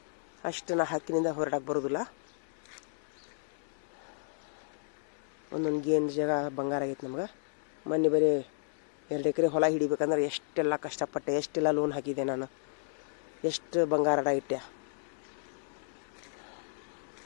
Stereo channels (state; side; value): silent; right; digital silence